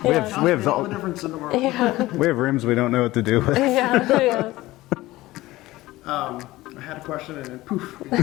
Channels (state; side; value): quieter; right; 17.9 dB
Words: We have all the difference in the world. we have rooms we don't know what to do with. Yeah. I had a question and then poof.